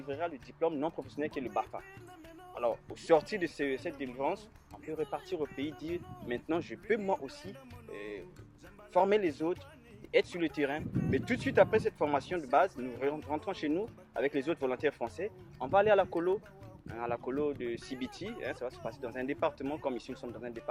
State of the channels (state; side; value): identical; both; correlation 1.00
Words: le diplôme non professionnel qui est le BAFA. Alors, au sortir de cette délivrance, on peut repartir au pays, dire maintenant je peux moi aussi former les autres, être sur le terrain. Mais tout de suite après cette formation de base, nous rentrons chez nous avec les autres volontaires français. On va aller à la colo de Sibiti. Ça va se passer dans un département, comme ici nous sommes dans un